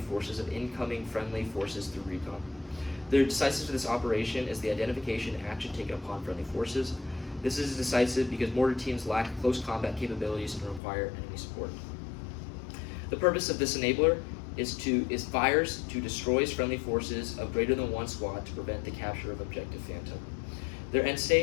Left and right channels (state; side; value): drops out; right; at 10.8 s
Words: forces of incoming friendly forces through recon. The decisive for this operation is the identification and action taken upon friendly forces. This is decisive because mortar teams lack close combat capabilities and require enemy support. The purpose of this enabler is fires to destroy friendly forces of greater than one squad to prevent the capture of Objective Phantom. Their end